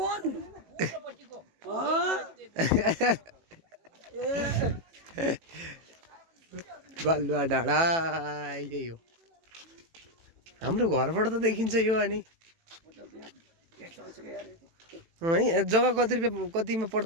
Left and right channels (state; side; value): late; left; 18 ms